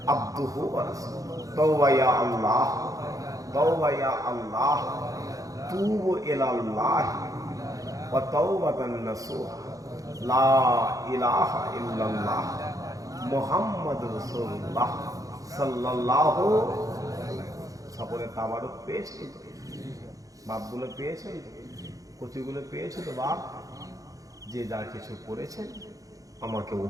अब्दुहु व रसूलुहु। तौबा या अल्लाह, तौबा या अल्लाह, तूबु इलल्लाह व तौबतन नसूहा, ला इलाहा इल्लल्लाह मुहम्मद रसूलुल्लाह সাল্লাল্লাহু। সকলে তাবারক পেয়েছেন তো? বাপগুলো পেয়েছেন তো? কচিগুলো পেয়েছে তো? বাপ যে যা কিছু করেছেন আমাকে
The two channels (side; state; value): left; late; 0.17 ms